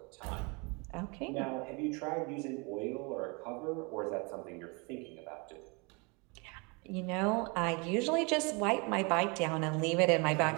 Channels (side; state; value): left; quieter; 30.4 dB